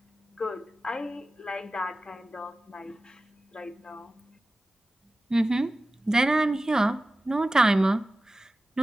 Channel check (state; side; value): normal; both; correlation 0.95